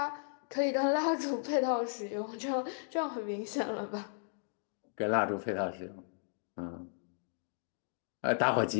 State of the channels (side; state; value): right; silent; digital silence